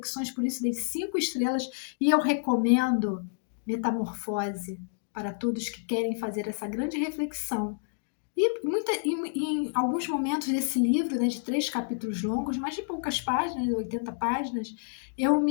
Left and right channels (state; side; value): silent; right; digital silence